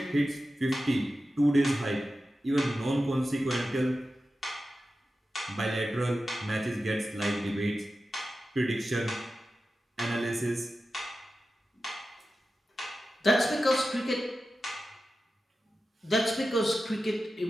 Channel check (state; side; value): normal; both; correlation 0.93